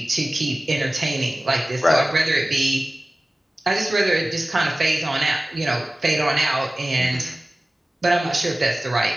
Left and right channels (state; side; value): normal; both; correlation 0.97